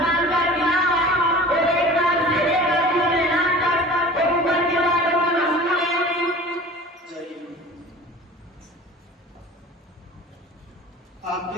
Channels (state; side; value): normal; both; correlation 0.40